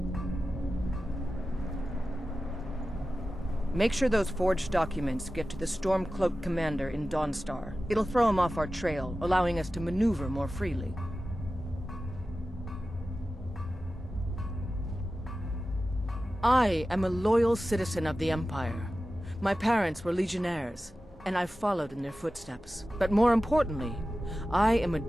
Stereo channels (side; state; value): both; normal; correlation 0.94